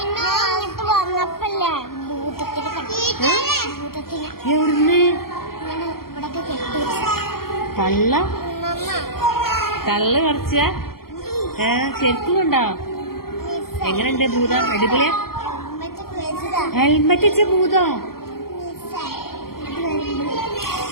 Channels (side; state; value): right; late; 0.93 ms